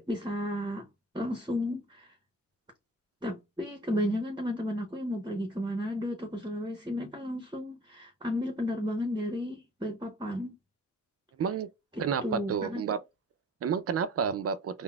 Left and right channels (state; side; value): normal; both; correlation 0.47